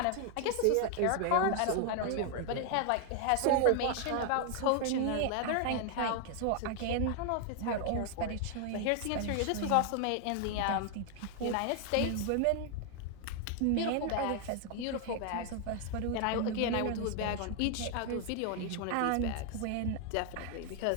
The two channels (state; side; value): different; both; correlation 0.00